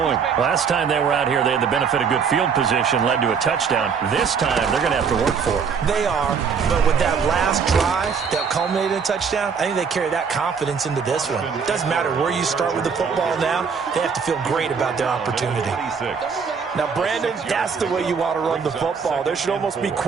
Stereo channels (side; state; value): left; quieter; 6.1 dB